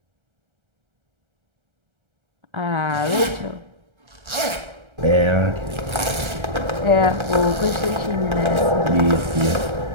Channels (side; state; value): left; late; 1.3 ms